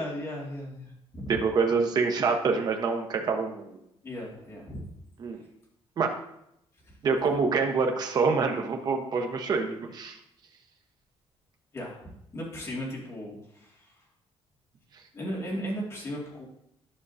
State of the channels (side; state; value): left; quieter; 3.9 dB